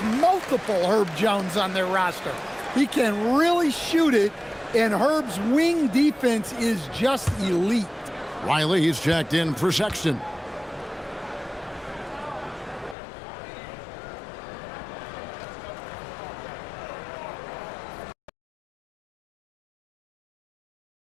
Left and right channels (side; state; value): right; drops out; at 13.0 s